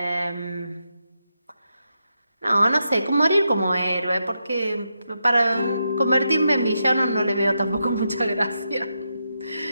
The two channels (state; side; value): inverted; both; correlation -0.85